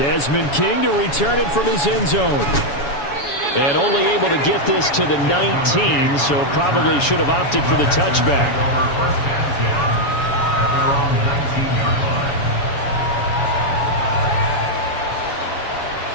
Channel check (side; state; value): right; late; 7.1 ms